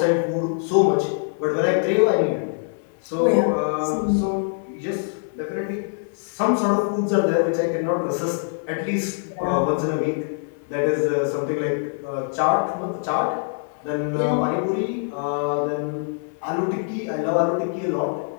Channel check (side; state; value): right; silent; 63 dB below the other